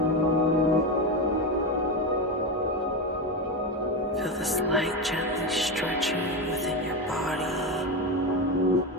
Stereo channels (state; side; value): normal; both; correlation 0.15